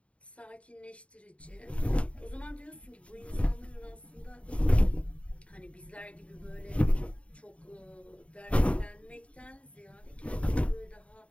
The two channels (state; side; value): late; right; 0.063 ms